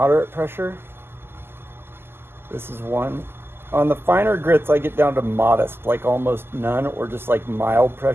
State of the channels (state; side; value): late; left; 0.11 ms